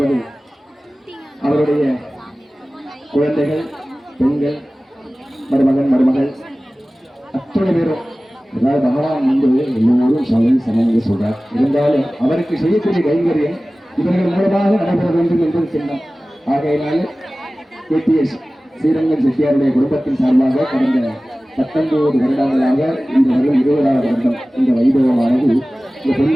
அவருடைய குழந்தைகள், பெண்கள், மருமகன் மருமகள் அத்தனை பேரும், அதாவது பகவான் வந்து எல்லோரும் சமம் சொல்றார். இருந்தாலும் அவருக்கு செய்யக்கூடிய கைங்கரியம் இவர்கள் மூலமாக நடைபெற வேண்டும் என்பது சின்னம். ஆகையினால KTS ஸ்ரீரங்கம் செட்டியாருடைய குடும்பத்தின் சார்பாக கடந்த 19 வருடங்களாக இந்த வருடம் 20வது வருடம் இந்த வைபவமானது இந்த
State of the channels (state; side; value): normal; both; correlation 0.97